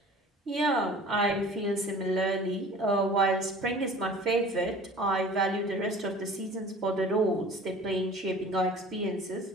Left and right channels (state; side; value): normal; both; correlation 0.45